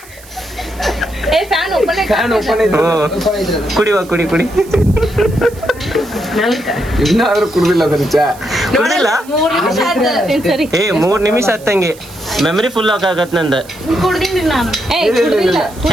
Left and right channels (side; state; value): right; noise; hiss, 22 dB below the sound